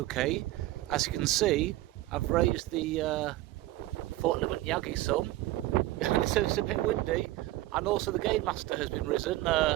As you can see, I've raised the Fort Limit Yagi some, so it's a bit windy, and also the gain master has been risen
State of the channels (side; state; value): left; quieter; 16.8 dB